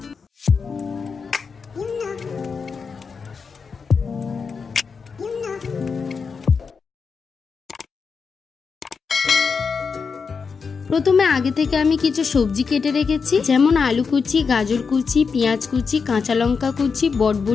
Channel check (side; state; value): right; quieter; 5.4 dB